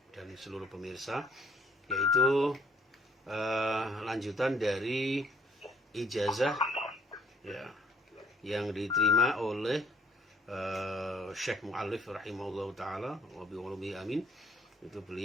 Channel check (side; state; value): both; normal; correlation 0.62